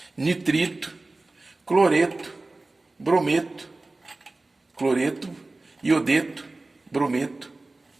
nitrito, cloreto, brometo, cloreto, iodeto, brometo.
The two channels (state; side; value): quieter; left; 3.1 dB